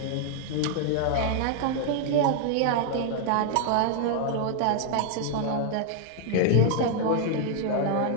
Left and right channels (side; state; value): both; different; correlation -0.01